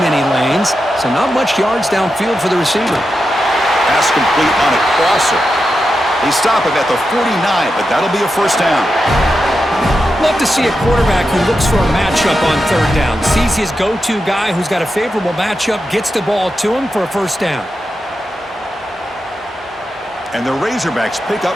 any lanes, so not much yards downfield for the receiver. Pass complete on a crosser. They stop it at the 49, but that'll be a first down. Love to see a quarterback who looks for a matchup on third down. Sees his go-to guy who's got a favorable matchup, gets the ball to him for a first down. And the Razorbacks pick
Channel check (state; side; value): normal; both; correlation 0.89